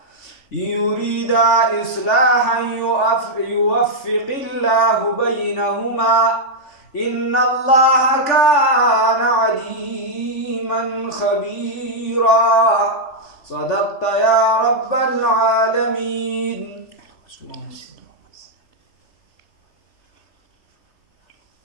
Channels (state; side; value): late; right; 3.5 ms